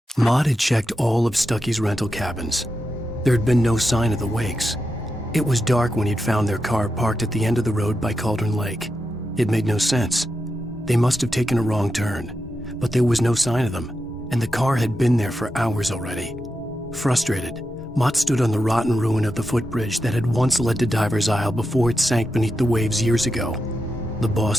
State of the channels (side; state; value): both; normal; correlation 0.88